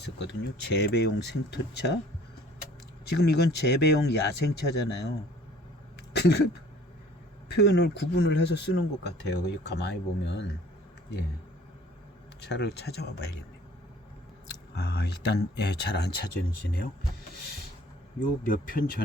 재배용 생토차. 지금 이건 재배용 야생차잖아요. 표현을 구분을 해서 쓰는 것 같아요. 가만히 보면 예, 차를 찾아와 봐야겠네. 일단 예, 잘 안 찾아지네요. 요 몇 편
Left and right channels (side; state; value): both; normal; correlation 0.53